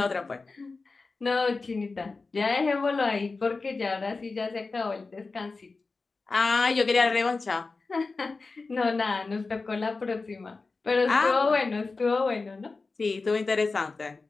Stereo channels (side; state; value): right; quieter; 3.9 dB